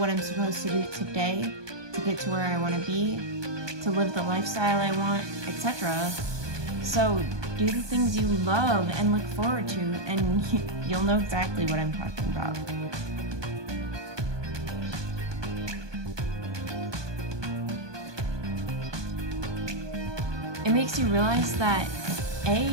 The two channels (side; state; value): left; late; 1.2 ms